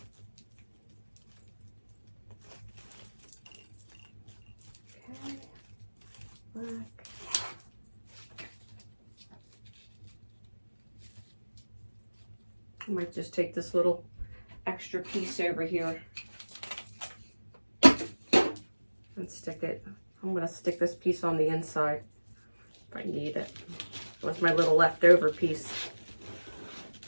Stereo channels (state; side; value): inverted; both; correlation -1.00